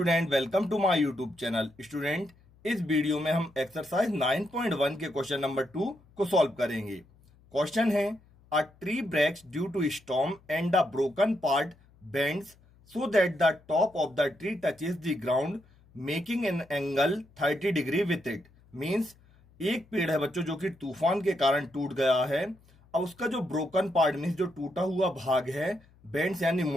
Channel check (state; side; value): noise; left; hum, 29 dB below the sound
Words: welcome to my YouTube channel. Student, इस video में हम एक्सरसाइज 9.1 के क्वेश्चन नंबर 2 को सॉल्व करेंगे। क्वेश्चन है, a tree breaks due to storm and the broken part bends so that the top of the tree touches the ground making an angle 30 degree with it. Means एक पेड़ है बच्चों जो कि तूफान के कारण टूट गया है। अब उसका जो ब्रोकन पार्ट मीन्स जो टूटा हुआ भाग है, बेंड्स यानी